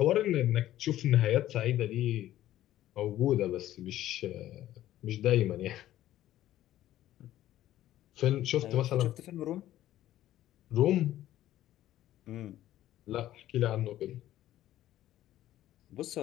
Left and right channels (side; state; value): right; quieter; 13.5 dB